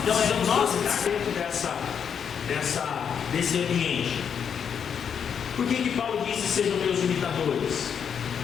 nós estamos dentro desse ambiente. Por que Paulo disse: sejam meus imitadores?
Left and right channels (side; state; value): right; quieter; 7.5 dB